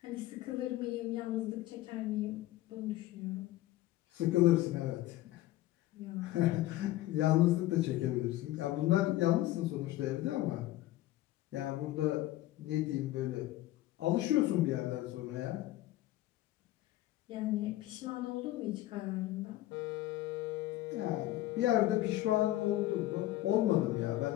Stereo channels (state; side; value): quieter; right; 15.7 dB